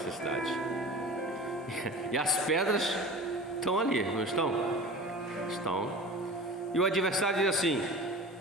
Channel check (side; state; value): both; normal; correlation 0.36